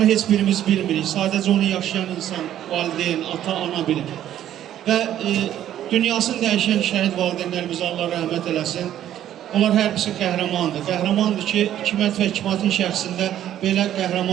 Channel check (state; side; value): quieter; left; 11.5 dB